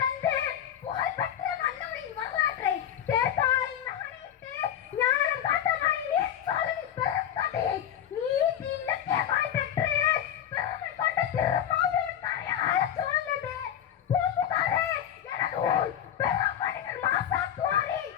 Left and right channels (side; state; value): right; quieter; 10.0 dB